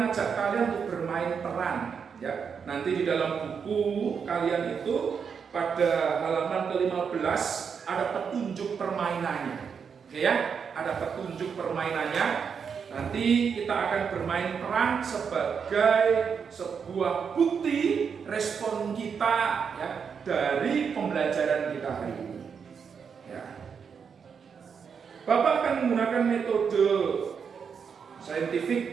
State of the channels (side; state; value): left; quieter; 6.5 dB